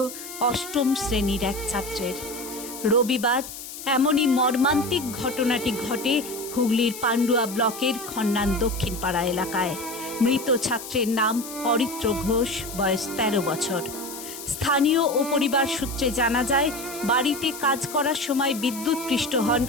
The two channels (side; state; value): left; noise; hiss, 11 dB below the sound